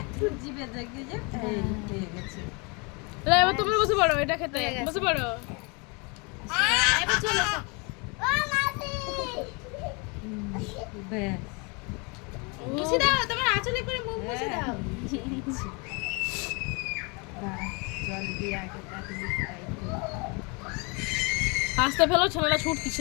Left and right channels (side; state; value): right; quieter; 31.2 dB